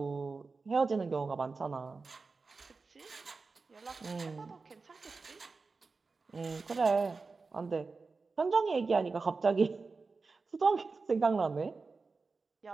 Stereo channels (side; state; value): left; quieter; 4.2 dB